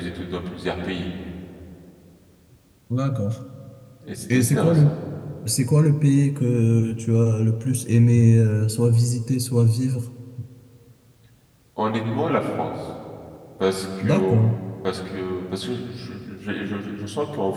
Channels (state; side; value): identical; both; correlation 1.00